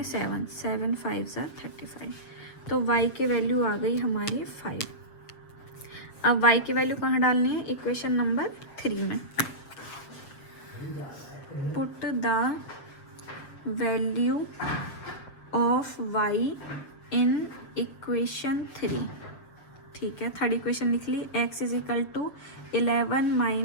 7, 7 × 5 = 35। तो y की वैल्यू आ गई हमारी 5। अब y की वैल्यू कहाँ डालनी है, इक्वेशन नंबर 3 में। Put the value of y in equation 3। ठीक है, थर्ड इक्वेशन लिख ली, x =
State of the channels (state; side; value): late; right; 7.4 ms